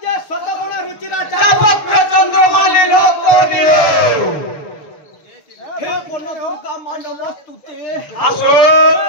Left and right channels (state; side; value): late; right; 6.8 ms